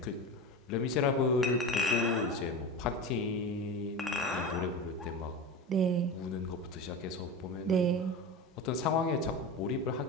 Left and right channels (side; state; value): both; normal; correlation 0.26